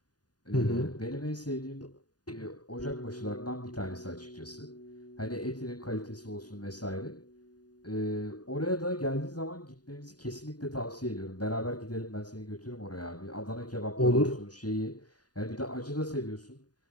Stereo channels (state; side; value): late; right; 0.69 ms